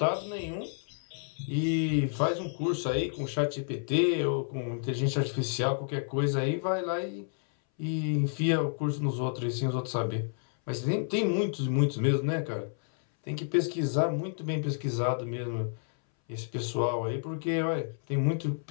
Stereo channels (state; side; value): silent; right; 58 dB below the other